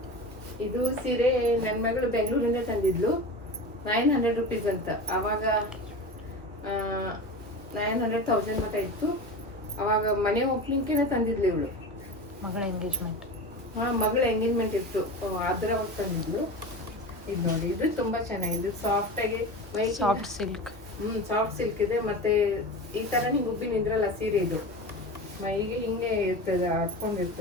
ಇದು ಸೀರೆ ನನ್ನ ಮಗಳು ಬೆಂಗಳೂರಿಂದ ತಂದಿದ್ಲು. 900 ರುಪೀಸ್ ಅಂತ. ಆವಾಗ 900,000 ಮಟ್ಟ ಇತ್ತು. ಅವಾಗ ಮನೆ ಓಪನಿಂಗ್ಗೆ ತಂದಿದ್ಲು ಇವಳು. ಮಗಳ ಎಂಗೇಜ್ಮೆಂಟ್. ಮಗಳ ಎಂಗೇಜ್ಮೆಂಟ್ ಇತ್ತು, ಅದ್ರ ತಂದಿದ್ಲು. ಇದು ನೋಡಿ, ಇದು ತುಂಬಾ ಚೆನ್ನಾಗಿದೆ. ಸಾಫ್ಟ್ ಆಗಿ ಸಾಫ್ಟ್ ಸಿಲ್ಕ್. ಸಾಫ್ಟ್ ಸಿಲ್ಕ್ ಇದೆ. ಮತ್ತೆ ಈ ತರ ಹಿಂಗೆ ಉಬ್ಬಿ ನಿಂದ್ರಲ್ಲ ಸೀರೆ, ಇದು ಮೈಗೆ ಹಿಂಗೆ ಇರ್ತದೆ,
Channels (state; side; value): normal; both; correlation 0.29